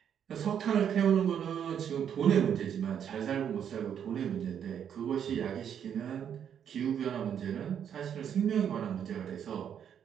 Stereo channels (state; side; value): quieter; left; 8.6 dB